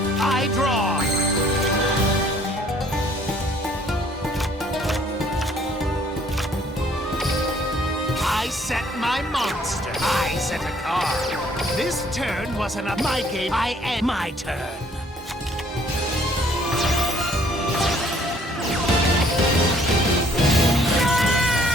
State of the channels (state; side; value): normal; both; correlation 0.60